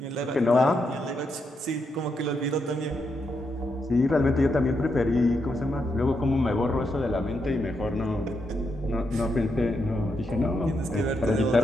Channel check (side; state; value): both; normal; correlation 0.81